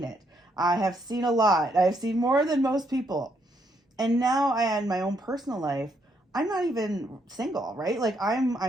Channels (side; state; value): both; normal; correlation 0.74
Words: it. I have seen a lot. I've seen more than most people. And now I in my own personal life, I'm not even single, right? Like